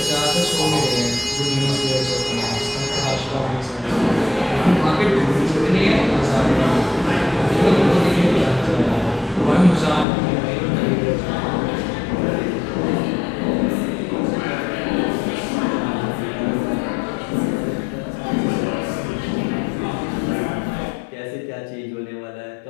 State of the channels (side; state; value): right; drops out; at 10.1 s